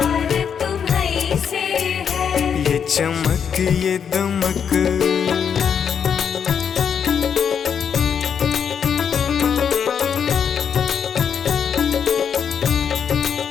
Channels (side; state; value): right; quieter; 7.4 dB